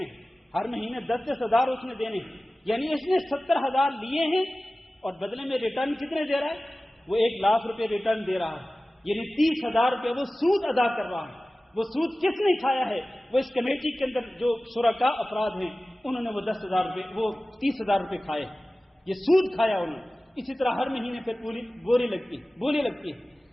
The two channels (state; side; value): normal; both; correlation 0.97